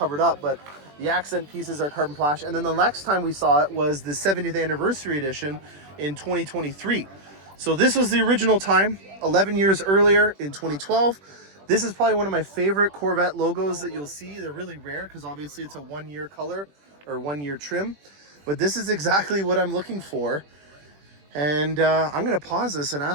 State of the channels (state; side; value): late; left; 21 ms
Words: up, but the accent pieces are carbon flash. And then the next time we saw it was the 70th anniversary edition in 2023. So this was the original time, 11 years earlier in 2012. This is probably one of my favorite Corvette logos that you'll see. They're really rare because obviously it's a 1-year color or 1-year trim. But this is exactly what I'm looking for. And I'm going to pause this and